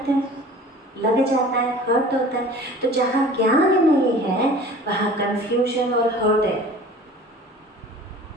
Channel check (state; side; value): normal; both; correlation 0.43